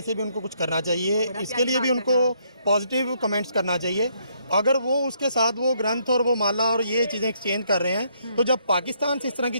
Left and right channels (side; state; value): both; inverted; correlation -0.72